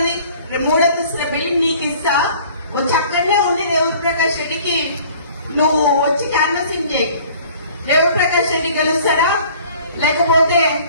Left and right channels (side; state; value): both; inverted; correlation -0.51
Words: 3 అంతస్తుల బిల్డింగ్ నీకు ఇస్తా. వచ్చి అక్కడనే ఉండి రేవూరు ప్రకాష్ రెడ్డికి నువ్వు వచ్చి క్యాన్వసింగ్ చేయి. రేవూరు ప్రకాష్ రెడ్డి గెలుస్తారా? లేకపోతే